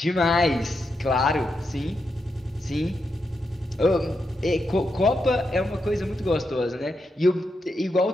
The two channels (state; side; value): normal; both; correlation 0.85